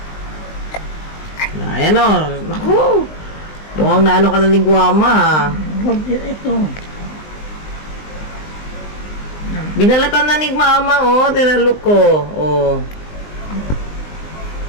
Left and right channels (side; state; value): right; late; 19 ms